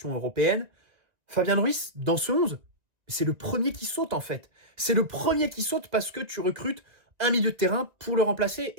européennes, Fabian Ruiz, dans ce 11, c'est le premier qui saute, en fait. C'est le premier qui saute parce que tu recrutes un milieu de terrain pour le remplacer.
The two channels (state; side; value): late; left; 1.8 ms